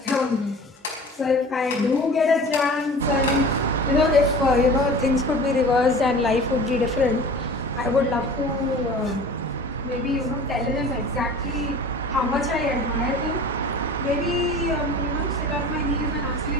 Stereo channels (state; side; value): normal; both; correlation 0.40